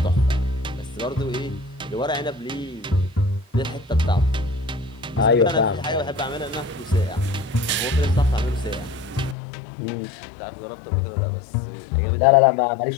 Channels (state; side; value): drops out; right; at 9.3 s